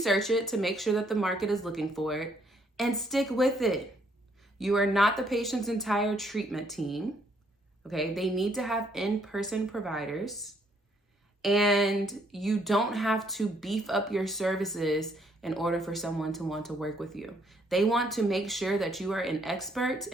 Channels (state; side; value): normal; both; correlation 0.68